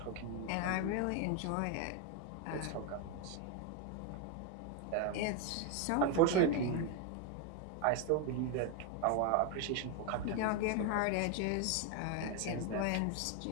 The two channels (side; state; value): both; different; correlation 0.01